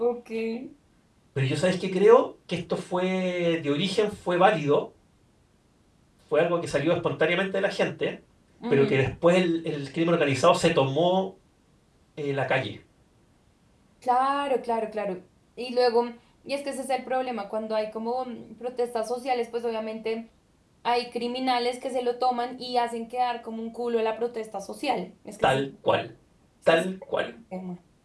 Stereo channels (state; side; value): identical; both; correlation 1.00